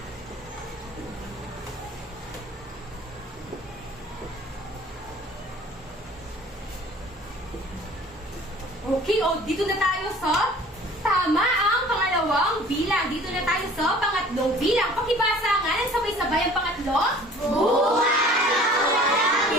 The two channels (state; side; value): normal; both; correlation 0.49